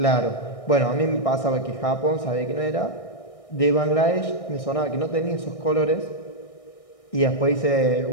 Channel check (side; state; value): right; late; 1.6 ms